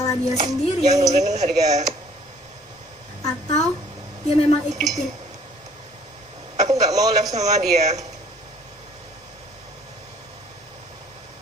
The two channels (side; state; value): both; normal; correlation 0.57